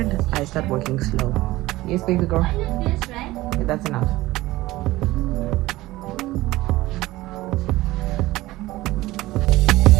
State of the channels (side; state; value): left; quieter; 18.0 dB